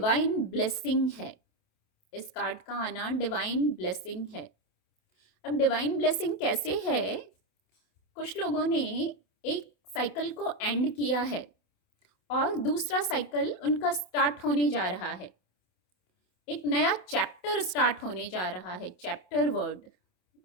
ब्लेसिंग है, इस कार्ड का आना डिवाइन ब्लेसिंग है। अब डिवाइन ब्लेसिंग कैसे है? कुछ लोगों ने एक साइकिल को एंड किया है और दूसरा साइकिल उनका स्टार्ट होने जा रहा है। एक नया चैप्टर स्टार्ट होने जा रहा है। चैप्टर वर्ड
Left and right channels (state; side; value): late; right; 27 ms